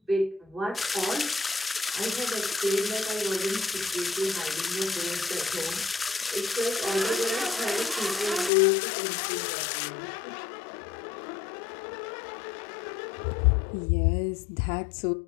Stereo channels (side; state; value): right; drops out; at 8.5 s